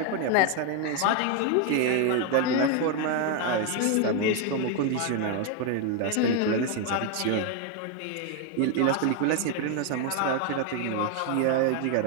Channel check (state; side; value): different; both; correlation 0.01